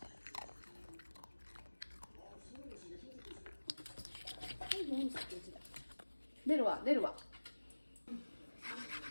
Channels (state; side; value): inverted; both; correlation -1.00